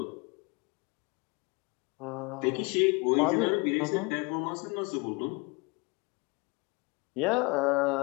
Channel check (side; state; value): right; quieter; 28.5 dB